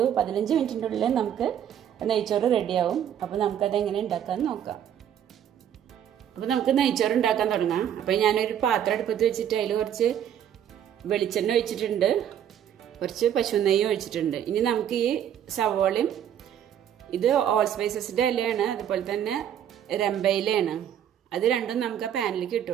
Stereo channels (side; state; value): left; quieter; 9.7 dB